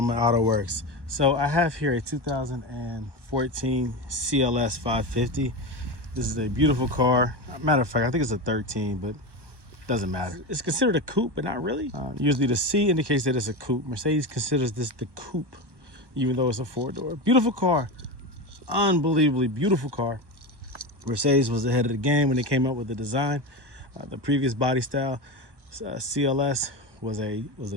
Auto Works. So I have here a 2014 CLS 550. This is a beautiful car. Matter of fact, I think it's a 13, but doesn't matter. It's considered a coupe, but not really. Usually the C indicates that it's a coupe. Mercedes considers this the coupe, even though it's a four-door. Beautiful car, unbelievably beautiful car. Mercedes was ahead of the game when they came up with the design. The previous body style, CLS, was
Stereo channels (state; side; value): late; left; 1.1 ms